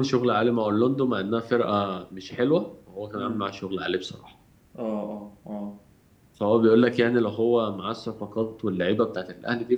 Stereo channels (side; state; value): both; identical; correlation 1.00